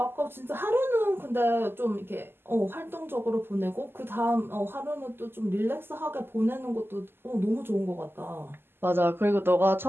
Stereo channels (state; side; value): late; left; 0.11 ms